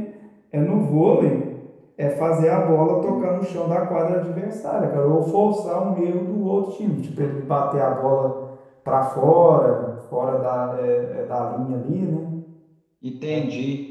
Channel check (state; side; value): identical; both; correlation 1.00